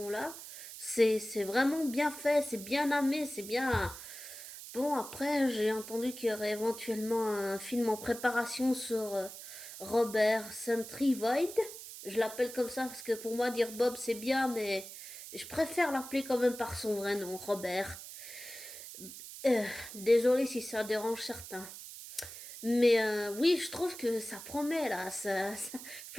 là. C'est vraiment bien fait, c'est bien amené, c'est bien. Bon, après, j'ai entendu qu'il y aurait éventuellement un film en préparation sur Robert Sentry Void. Je l'appelle comme ça parce que pour moi, dire Bob, c'est bien, mais je préfère l'appeler quand même par son vrai nom, Robert. Euh, Désolé si ça dérange certains. Mais oui, je trouve que ça promet là.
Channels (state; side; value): noise; right; hiss, 12 dB below the sound